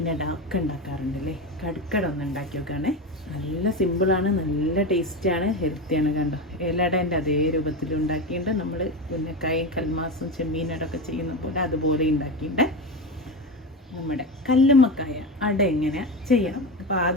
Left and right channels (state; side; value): normal; both; correlation 0.20